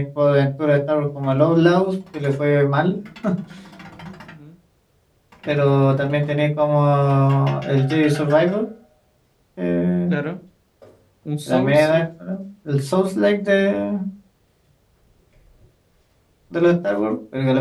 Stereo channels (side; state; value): both; identical; correlation 1.00